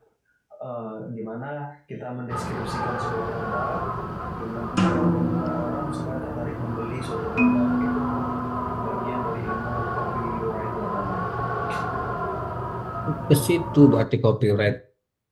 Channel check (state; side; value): identical; both; correlation 1.00